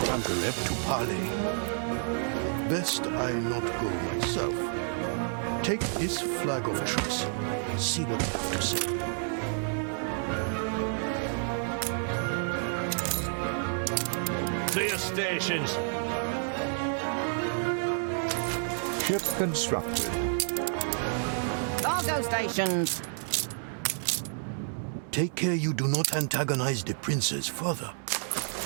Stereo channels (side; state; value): left; silent; digital silence